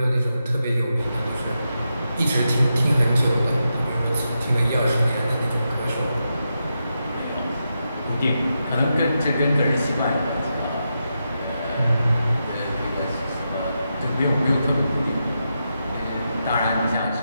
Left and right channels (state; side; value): inverted; both; correlation -0.87